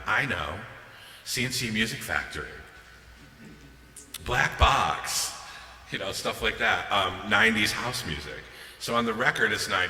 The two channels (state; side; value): identical; both; correlation 1.00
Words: I know, CNC Music Factory, Black Box, you know, stuff like that, 90s house music. So on the record, it's